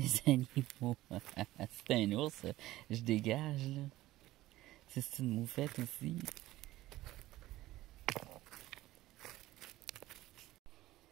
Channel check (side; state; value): left; quieter; 16.4 dB